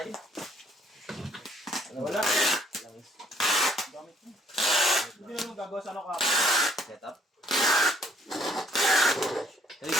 Wala. Gamit mo. Hindi naman gagawa sa ano ka. Set up? Ay,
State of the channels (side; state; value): both; normal; correlation 0.64